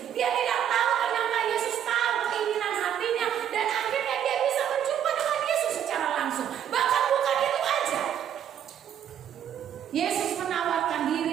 Dia tidak tahu ternyata Yesus tahu keinginan hatinya dan akhirnya dia bisa berjumpa dengan Yesus secara langsung. Bahkan bukan itu aja. Yesus menawarkan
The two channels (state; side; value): quieter; left; 9.7 dB